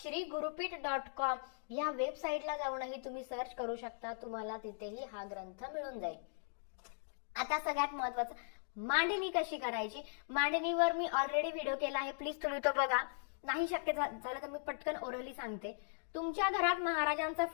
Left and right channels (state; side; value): silent; right; digital silence